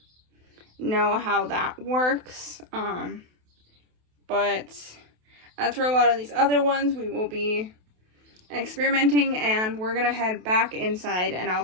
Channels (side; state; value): left; late; 28 ms